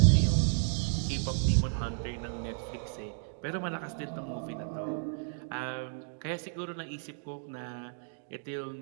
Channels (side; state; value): left; silent; digital silence